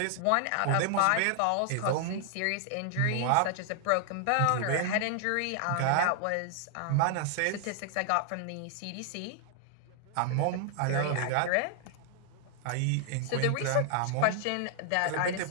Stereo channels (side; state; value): both; different; correlation 0.00